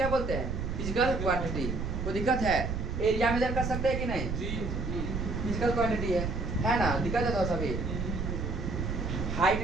बोलते हैं? Physical quantity. कोई दिक्कत है? एरिया मेजर कर सकते हैं कि नहीं? फिजिकल क्वांटिटी है ना? दिक्कत है तो सभी।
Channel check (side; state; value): right; noise; rumble, 3 dB below the sound